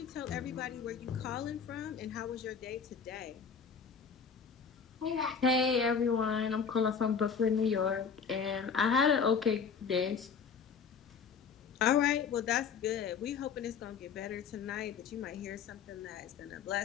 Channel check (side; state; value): right; quieter; 6.3 dB